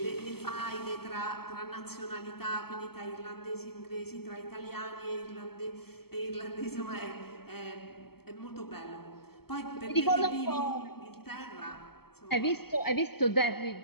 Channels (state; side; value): late; right; 0.96 ms